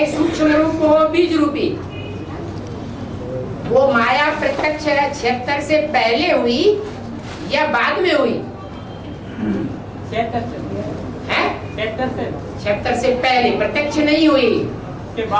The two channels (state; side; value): identical; both; correlation 1.00